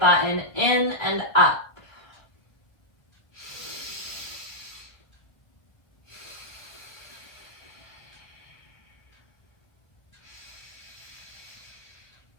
in and up.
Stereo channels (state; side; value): late; right; 1.3 ms